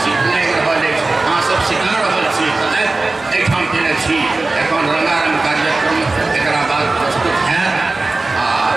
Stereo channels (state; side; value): quieter; left; 3.3 dB